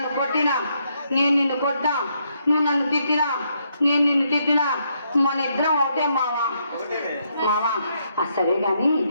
కొట్టినా నేను నిన్ను కొట్టా నువ్వు నన్ను తిట్టినా నేను నిన్ను తిట్టినా మన ఇద్దరం ఒకటే మావా మావా సరే గాని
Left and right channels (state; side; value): inverted; both; correlation -0.76